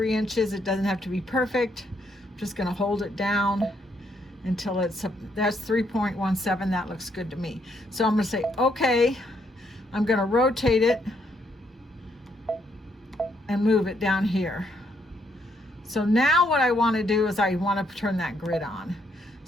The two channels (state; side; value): normal; both; correlation 0.73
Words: inches. It doesn't have to be perfect. I'm just going to hold it down until that's 3.17. That looks good to me. So I'm going to say okay. I'm going to rotate it and move it down here. So now what I want to do is I want to turn that grid on.